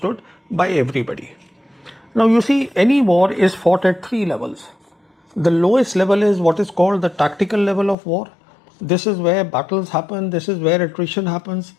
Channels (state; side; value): drops out; right; at 8.0 s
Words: by everybody. Now, you see, any war is fought at three levels. The lowest level is what is called the tactical level of war. This is where battles happen. This is where attrition happens.